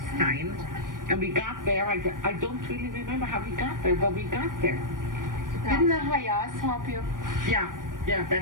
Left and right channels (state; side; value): late; left; 0.90 ms